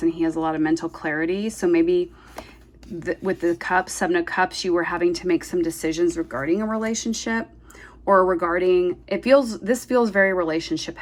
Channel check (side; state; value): both; identical; correlation 1.00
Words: and he has a lot of mental clarity. So maybe with the Cups, 7 of Cups, you were having to make some decisions regarding a relationship or regarding, this feels very relationship